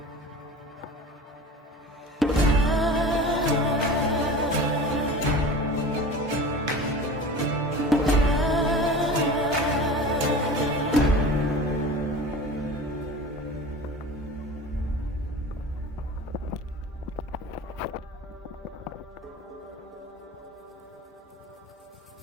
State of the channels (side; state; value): both; normal; correlation 0.36